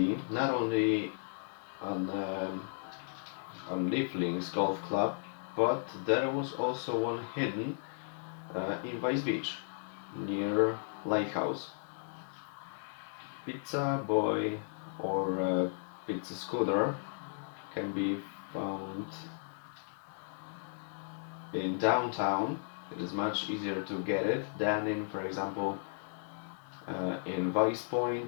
not only on Leaflings Golf Club, but there was also one hidden in Vice Beach, near Lighthouse. Pizza Boy or Pizza Scooter can be found in downtown. It is much easier to get it than in, for example, in Vice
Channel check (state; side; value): silent; right; digital silence